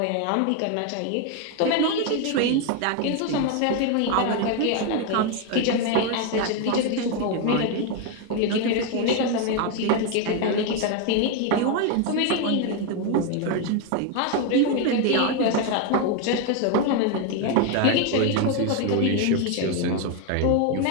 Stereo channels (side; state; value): both; different; correlation 0.02